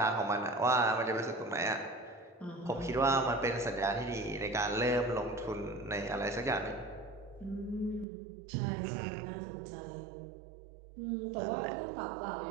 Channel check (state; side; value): drops out; left; at 8.1 s